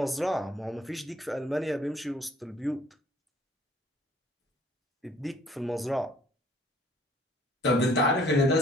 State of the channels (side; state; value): both; normal; correlation 0.57